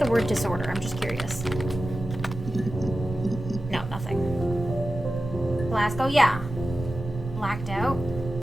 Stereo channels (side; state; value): both; normal; correlation 0.94